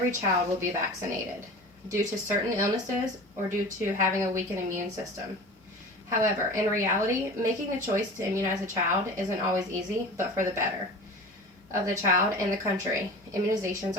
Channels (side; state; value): both; normal; correlation 0.36